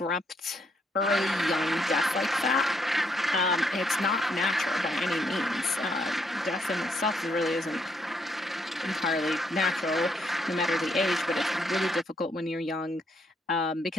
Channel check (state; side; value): normal; both; correlation 0.74